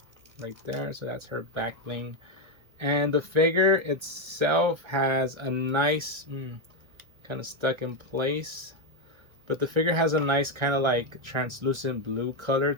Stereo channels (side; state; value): left; late; 1.3 ms